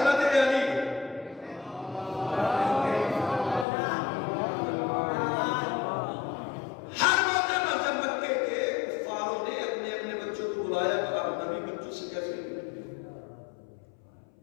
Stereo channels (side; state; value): right; drops out; at 3.7 s